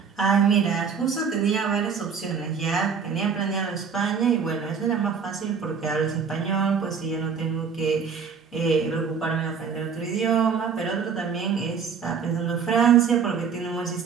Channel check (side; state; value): left; quieter; 6.3 dB